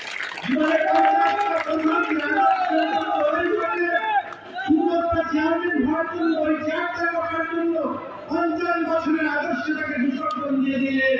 জীবনের 50টা চেয়ারম্যান হওয়ার জন্য ওই চেয়ারটা রাখার জন্য 50 বছরের আদর্শটাকে বিসর্জন দিয়ে দিলেন।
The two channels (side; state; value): both; identical; correlation 1.00